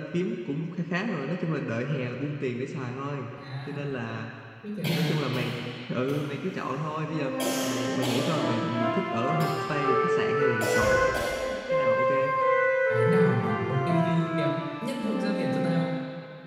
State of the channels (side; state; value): both; identical; correlation 1.00